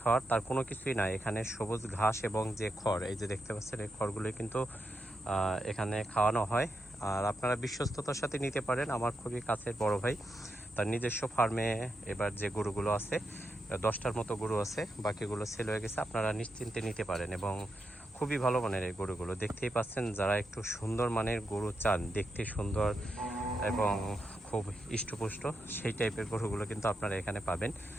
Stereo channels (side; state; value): both; normal; correlation 0.85